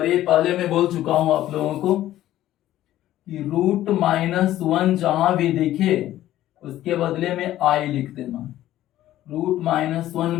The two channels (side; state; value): right; quieter; 13.7 dB